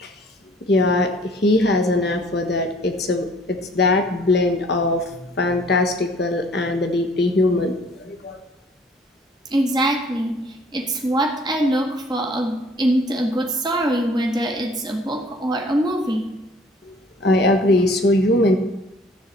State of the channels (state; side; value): normal; both; correlation 0.55